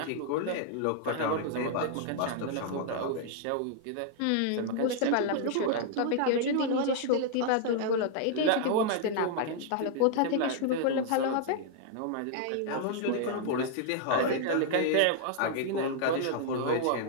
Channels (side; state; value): both; different; correlation -0.01